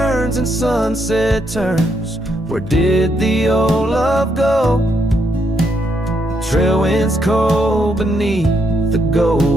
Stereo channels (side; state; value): both; normal; correlation 0.76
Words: and sunset turns. Where did the old love go? Trail winds cold beneath the